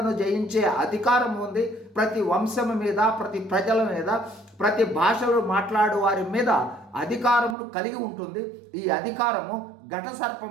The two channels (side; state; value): left; drops out; at 7.6 s